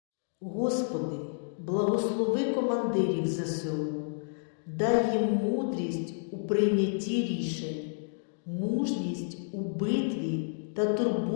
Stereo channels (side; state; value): right; silent; digital silence